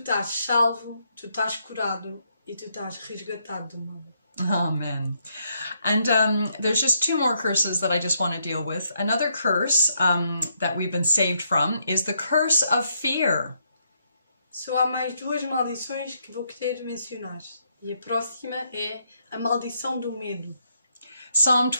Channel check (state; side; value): inverted; both; correlation -0.76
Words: salvo, tu estás curado e tu estás resgatado do mal. Amen. And there's just two more curses that I just want to deal with. Another curse that we've been saved from is the curse of fear. Só há mais duas maldições que vou querer mencionar. E a próxima é a maldição do medo. Psalm